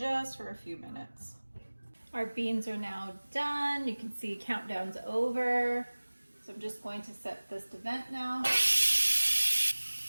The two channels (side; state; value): both; inverted; correlation -1.00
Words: for a few minutes. Our beans are now done. You can see countdown's over. So I'm just going to set this to vent now.